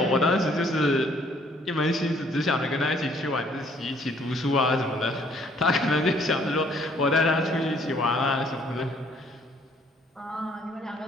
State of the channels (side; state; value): both; normal; correlation 0.62